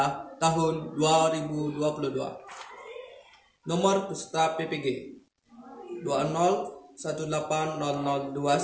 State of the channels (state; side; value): identical; both; correlation 1.00